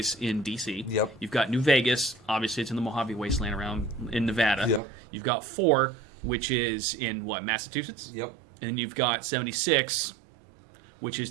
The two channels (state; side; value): drops out; left; at 4.8 s